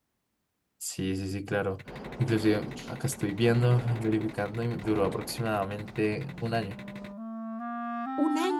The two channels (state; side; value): identical; both; correlation 1.00